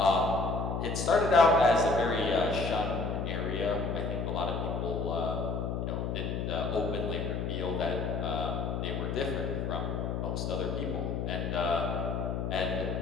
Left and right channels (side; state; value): left; noise; hum, 2 dB below the sound